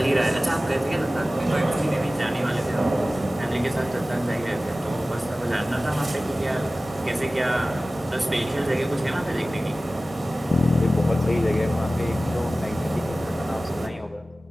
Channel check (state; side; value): normal; both; correlation 0.96